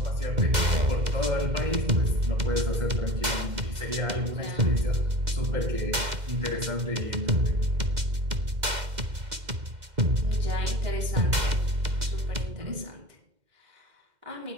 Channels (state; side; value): late; left; 2.1 ms